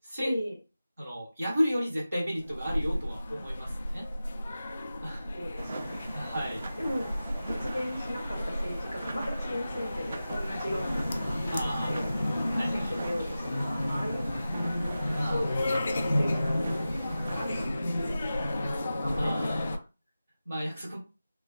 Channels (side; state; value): both; inverted; correlation -0.94